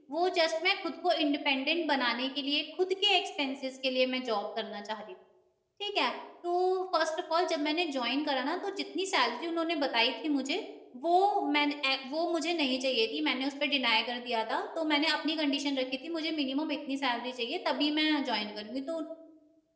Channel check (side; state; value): both; identical; correlation 1.00